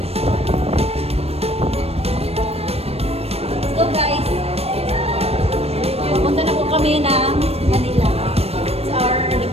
Let's go, guys. Pupunta na po kami ng Manila. It's our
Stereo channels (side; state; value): left; late; 0.29 ms